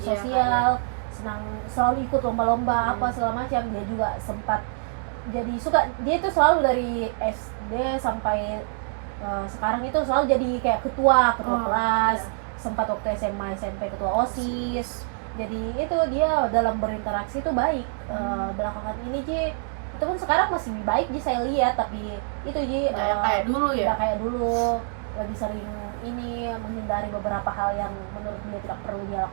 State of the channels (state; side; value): silent; left; 61 dB below the other